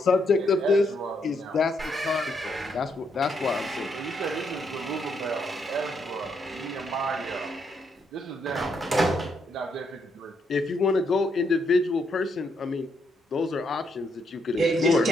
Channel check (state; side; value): normal; both; correlation 0.76